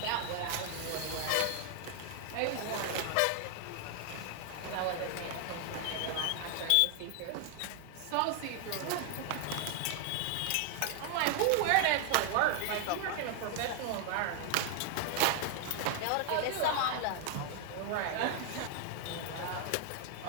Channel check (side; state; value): both; different; correlation 0.00